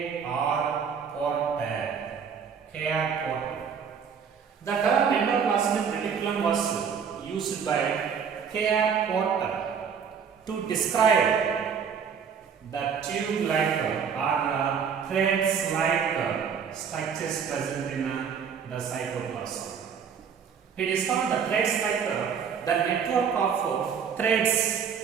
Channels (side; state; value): left; quieter; 6.9 dB